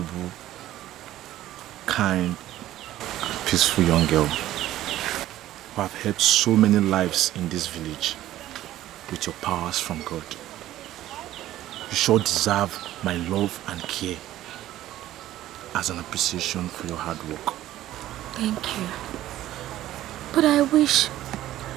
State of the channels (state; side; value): quieter; left; 14.0 dB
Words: kind, and peaceful young girl who have helped so many lives in this village with your powers from God. You sure deserve my love and care as an appreciation for your hard work. Thank you. But I wish